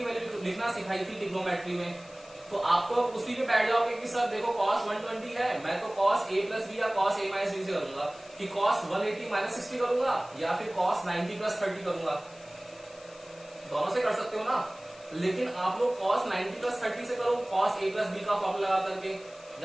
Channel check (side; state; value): left; noise; hiss, 23 dB below the sound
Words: वैल्यू लिखना सिखाई थी ट्रिग्नोमेट्री में, तो आपको उसी पे बैठ जाओगे कि सर देखो cos 120 है, मैं तो cos a प्लस बी या cos a माइनस बी से करूंगा, कि cos 180 माइनस 60 करूंगा या फिर cos 90 प्लस 30 करूंगा, दोनों से कर सकते हो ना। लेकिन आप लोग cos 90 प्लस 30 से करो cos a प्लस बी का फॉर्मूला लगा करके,